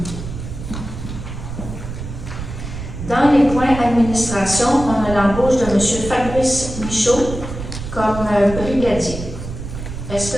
Dans les points administration, on a l'embauche de M. Fabrice Michaud comme brigadier. Est-ce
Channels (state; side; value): noise; right; rumble, 8 dB below the sound